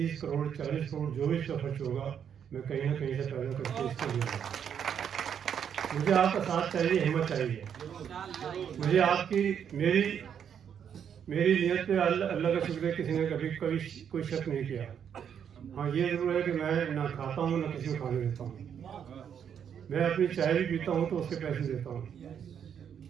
करोड़ 40 करोड़ जो भी इसका खर्च होगा मैं कहीं ना कहीं से पैदा करके इसको दूँगा। मुझे आपका साथ चाहिए, हिम्मत चाहिए। मुझे आपकी मेरी नीयत पे अल्लाह का शुक्र है किसी ने कभी कोई शक नहीं किया। हाँ, ये जरूर है कि मैं ना खाता हूँ ना किसी को खाने देता हूँ। मैं अपनी चाय भी पीता हूँ तो उसके पैसे देता हूँ।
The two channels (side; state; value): left; quieter; 8.2 dB